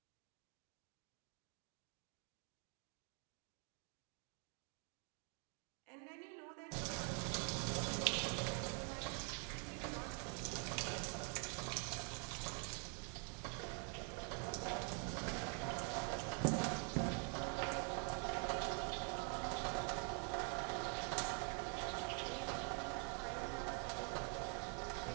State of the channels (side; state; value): left; quieter; 39.9 dB